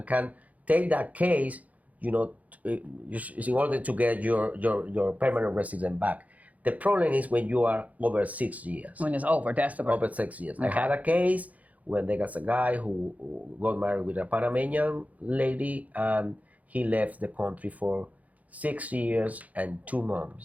can take that case, in order to get your permanent resident back. The problem is when you are over 6 years. When it's over, that's the Over 6 years. Okay. I had a case when there was a guy who got married with a Panamanian lady, and he left the country for 6 years and 2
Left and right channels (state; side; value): late; left; 0.073 ms